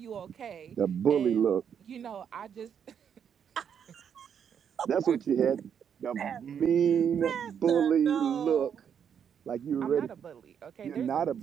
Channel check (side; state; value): left; quieter; 8.0 dB